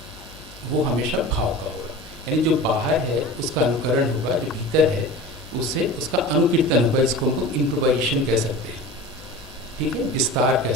वो हमेशा भाव का होगा। यानी जो बाहर है उसका अनुकरण होगा, जो भीतर है उससे उसका अनुकीर्तन होगा। इसको हम लोग इम्प्रोवाइजेशन कह सकते हैं, ठीक है, विस्तार कह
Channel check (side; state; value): both; normal; correlation 0.35